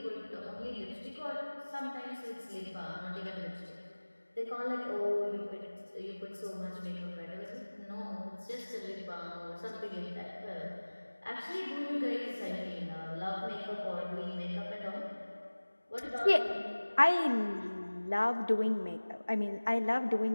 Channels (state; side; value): inverted; both; correlation -1.00